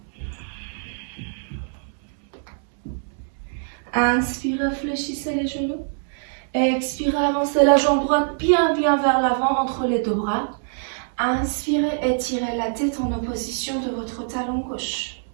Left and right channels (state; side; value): silent; left; 63 dB below the other